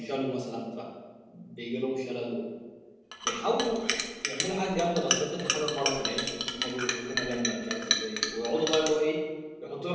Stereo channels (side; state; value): both; identical; correlation 1.00